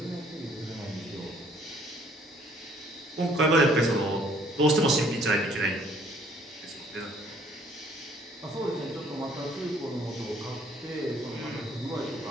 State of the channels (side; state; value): both; normal; correlation 0.61